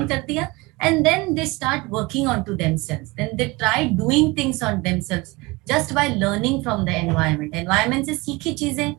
कर दिया and then they start working onto themselves, then they try doing things on themselves just by learning from the environment से सीखी चीजें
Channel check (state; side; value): quieter; left; 23.8 dB